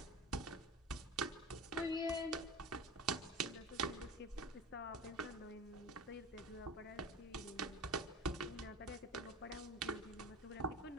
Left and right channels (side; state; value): both; normal; correlation 0.33